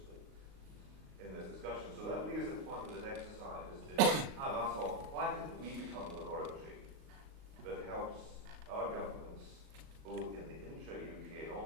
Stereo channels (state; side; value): late; left; 38 ms